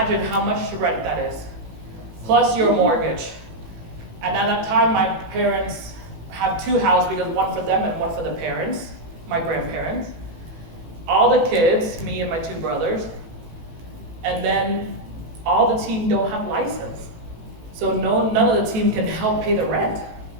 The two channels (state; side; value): late; left; 18 ms